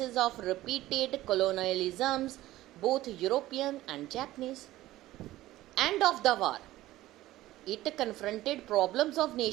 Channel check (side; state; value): left; quieter; 16.0 dB